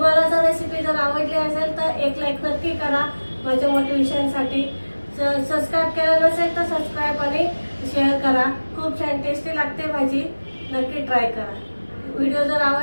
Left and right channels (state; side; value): inverted; both; correlation -1.00